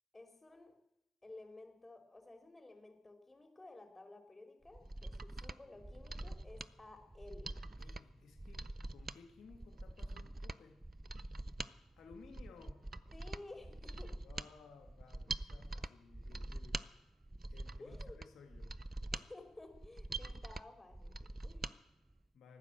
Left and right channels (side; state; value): both; normal; correlation 0.89